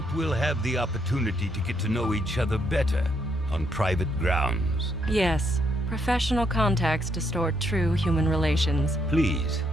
we'll have the opportunity to get to know each other better on private grounds. Yes, professional contacts distort true human relations. Please,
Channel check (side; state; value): both; normal; correlation 0.75